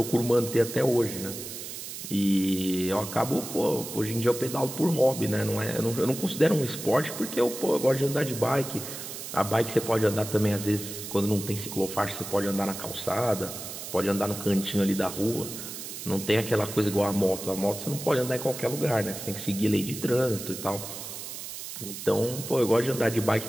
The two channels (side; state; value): right; noise; hiss, 9 dB below the sound